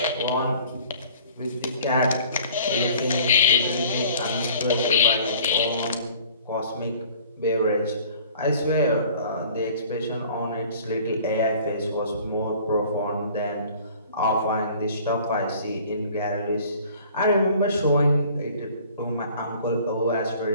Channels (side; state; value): both; inverted; correlation -0.50